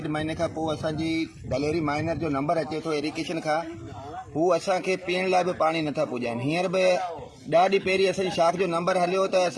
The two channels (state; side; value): identical; both; correlation 1.00